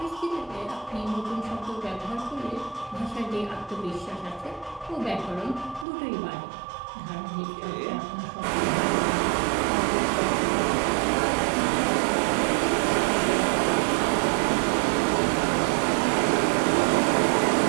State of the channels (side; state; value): left; drops out; at 5.9 s